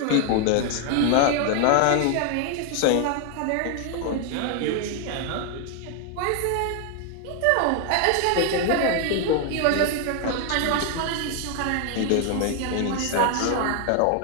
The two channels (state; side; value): different; both; correlation 0.00